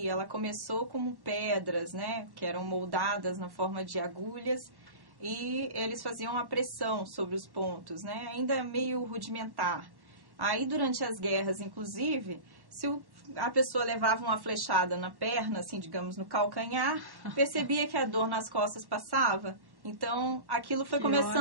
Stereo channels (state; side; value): late; left; 1.1 ms